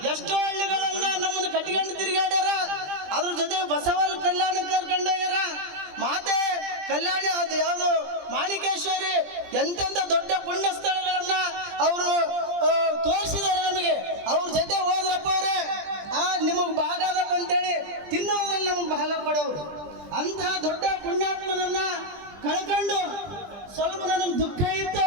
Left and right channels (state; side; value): late; left; 20 ms